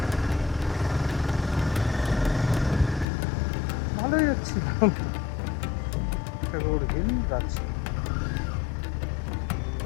ভালোই যাচ্ছি। ট্যাগোর হিল যাচ্ছি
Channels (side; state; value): right; drops out; at 3.1 s